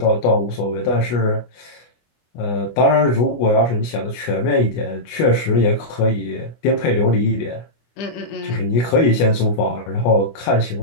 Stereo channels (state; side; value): late; right; 25 ms